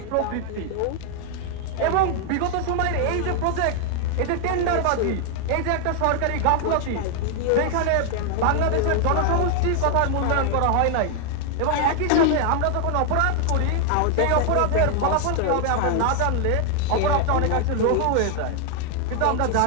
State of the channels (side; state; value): both; different; correlation 0.00